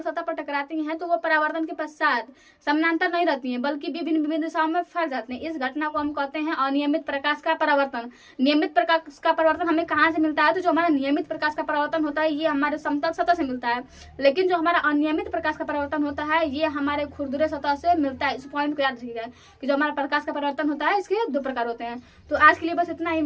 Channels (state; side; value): identical; both; correlation 1.00